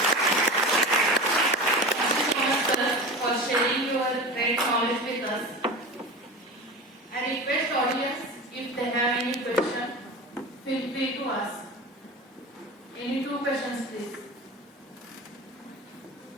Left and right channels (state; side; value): normal; both; correlation 0.31